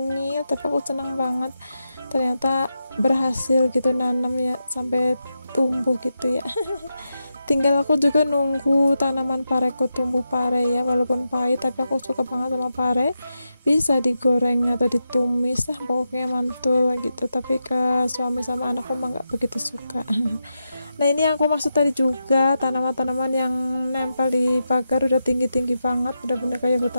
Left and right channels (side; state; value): both; inverted; correlation -0.88